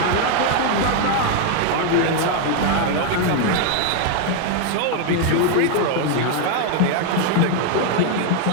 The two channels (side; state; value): both; different; correlation 0.01